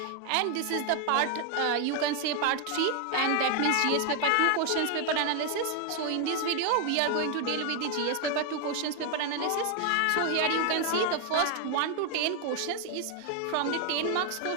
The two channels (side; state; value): both; different; correlation 0.00